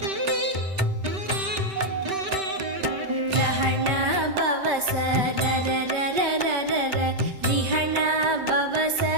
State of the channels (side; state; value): left; late; 5.2 ms